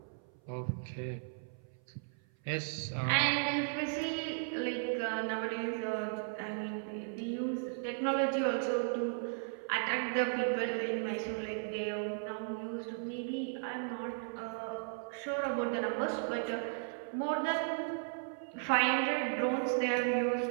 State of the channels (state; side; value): silent; left; 54 dB below the other